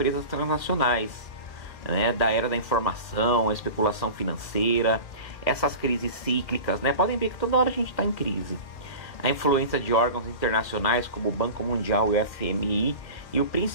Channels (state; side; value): late; right; 2.2 ms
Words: transnacionais, né? Da era da informação, a especulação financeira, essas crises cíclicas, né? Podem ver que toda hora a gente está em crise. A influência de órgãos internacionais como o Banco Mundial e o FMI, e o